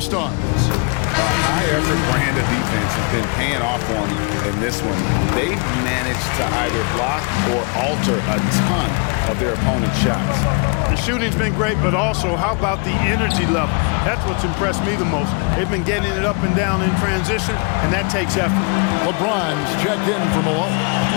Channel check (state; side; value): quieter; right; 35.1 dB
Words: A high-effort brand of defense has been paying off for them in this one. They've managed to either block or alter a ton of their opponent's shots. The shooting's been great, but also how about the energy level? That's what's impressed me the most. They've been getting it up and down in transition, and that takes effort. LeBron's checked in from below.